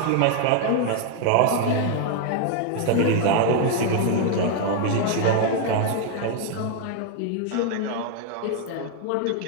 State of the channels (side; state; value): both; different; correlation 0.00